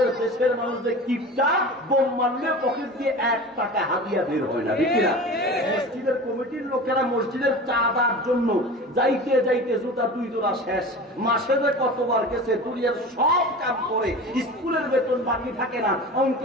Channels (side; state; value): both; normal; correlation 0.34